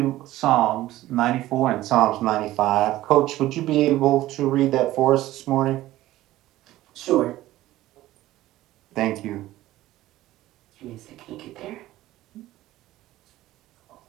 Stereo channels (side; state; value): left; quieter; 15.7 dB